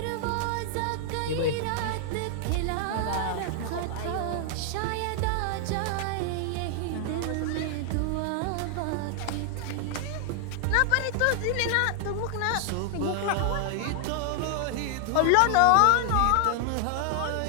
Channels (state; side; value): different; both; correlation 0.00